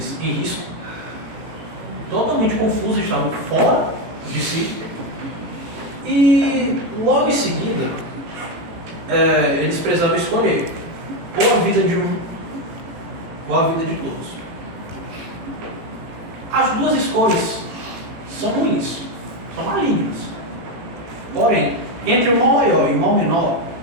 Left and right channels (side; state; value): left; late; 18 ms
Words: em risco, totalmente confusos, estavam fora de si. E logo em seguida, eles precisavam escolher ou a vida de um ou a vida de todos. As duas escolhas são ruins, são malignas. Porém, entre o mal maior e o mal menor,